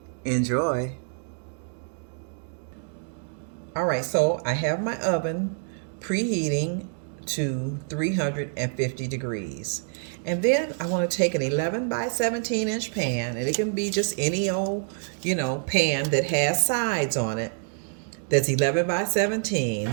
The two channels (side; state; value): left; silent; 60 dB below the other